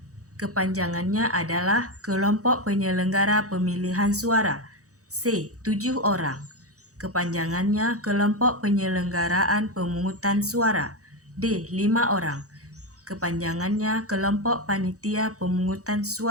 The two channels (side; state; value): left; late; 0.66 ms